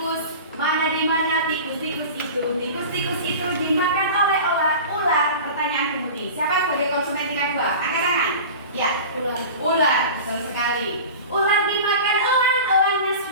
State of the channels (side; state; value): both; inverted; correlation -0.35